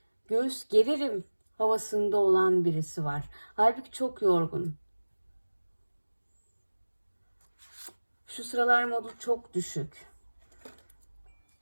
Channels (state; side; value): inverted; both; correlation -1.00